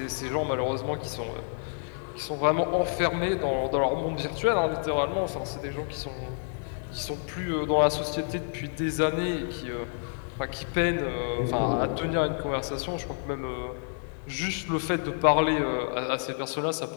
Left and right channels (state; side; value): silent; right; 57 dB below the other